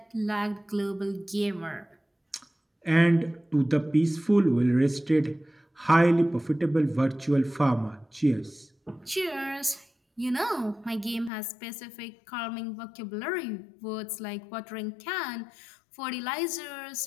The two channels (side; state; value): right; drops out; at 11.3 s